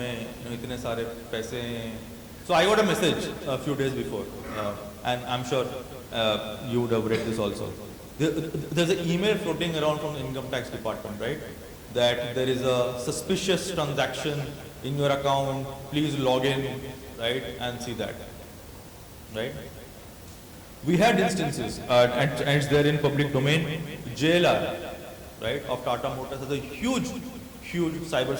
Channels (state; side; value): identical; both; correlation 1.00